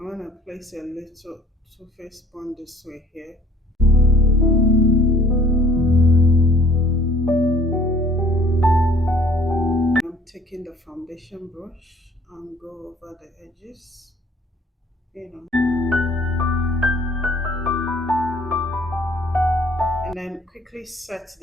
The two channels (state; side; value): normal; both; correlation 0.55